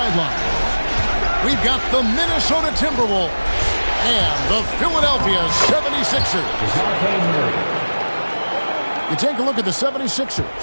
We've got the Minnesota Timberwolves and the Philadelphia 76ers. You take a look at the 76ers.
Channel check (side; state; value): both; inverted; correlation -1.00